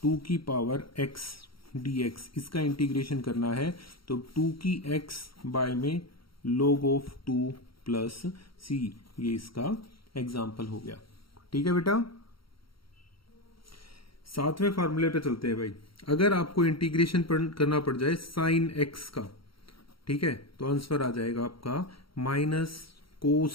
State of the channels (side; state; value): right; late; 0.74 ms